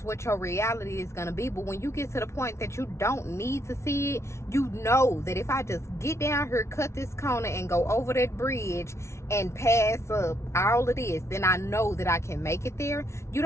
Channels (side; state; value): right; late; 0.13 ms